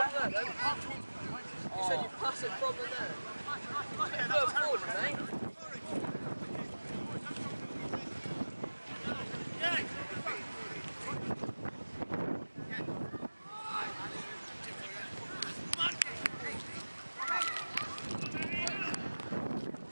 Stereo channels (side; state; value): both; inverted; correlation -1.00